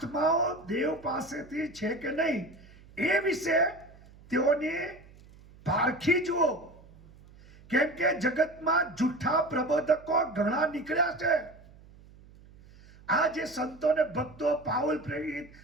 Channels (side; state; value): right; noise; hum, 23 dB below the sound